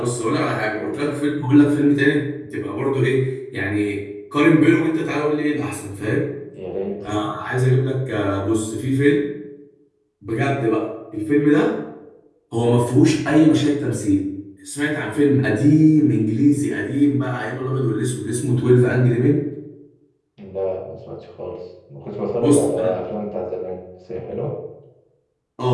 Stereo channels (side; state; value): both; identical; correlation 1.00